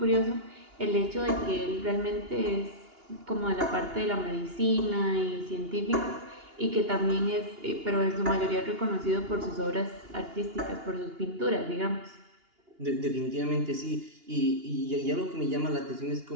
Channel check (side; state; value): left; late; 2.8 ms